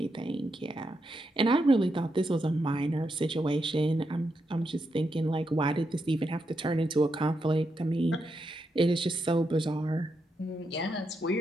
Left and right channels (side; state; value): both; normal; correlation 0.83